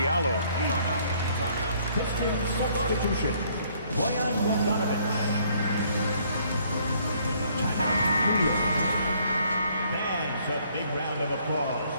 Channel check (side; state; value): both; inverted; correlation -0.64